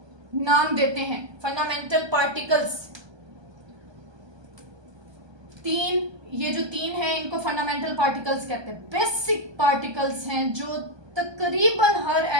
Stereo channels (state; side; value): late; left; 1.2 ms